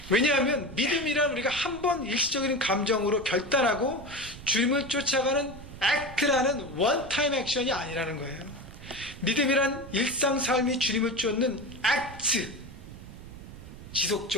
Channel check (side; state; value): right; noise; rumble, 15 dB below the sound